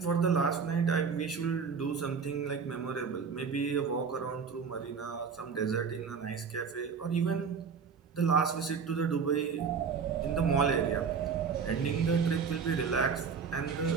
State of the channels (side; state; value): left; quieter; 5.9 dB